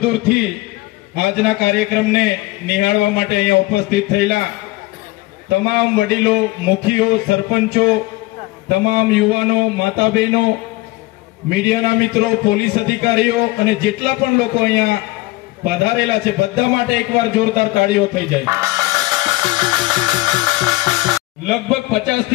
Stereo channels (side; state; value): right; quieter; 20.4 dB